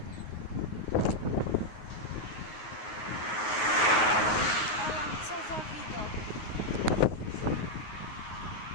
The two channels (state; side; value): late; right; 9.4 ms